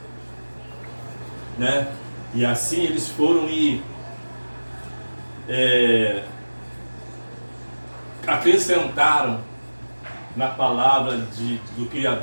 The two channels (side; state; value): both; inverted; correlation -1.00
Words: né? E assim eles foram e acrescentaram na palavra do